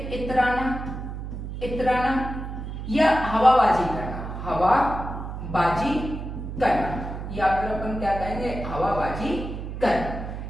इतराना, इतराना, या हवाबाजी करना, हवाबाजी करना, या फिर अपन क्या कहेंगे, हवाबाजी करना।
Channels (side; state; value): right; noise; hum, 7 dB below the sound